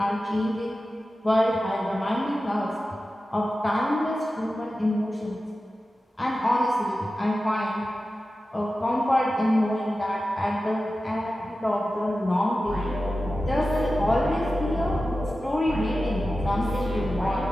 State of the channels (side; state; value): both; normal; correlation 0.94